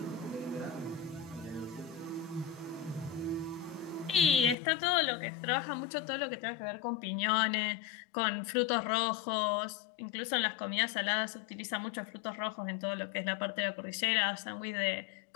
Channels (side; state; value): right; drops out; at 4.5 s